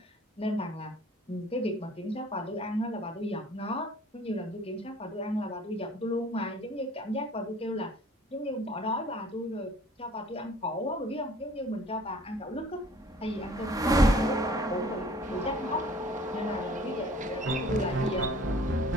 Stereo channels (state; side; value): normal; both; correlation 0.52